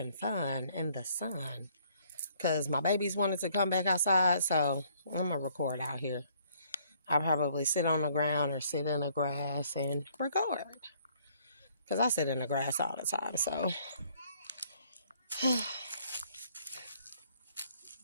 fun in the sun. Because my babies wanted to come back outside, so I'm going to record out here. I'll probably sit on the ground or sit in the grass and record. Because I sit in the grass all the time, so.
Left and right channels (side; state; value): both; inverted; correlation -0.64